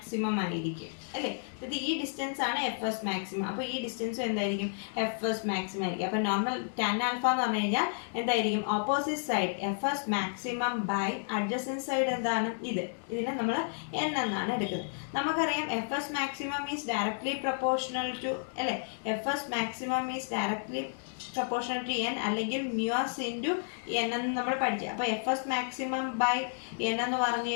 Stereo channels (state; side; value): silent; right; digital silence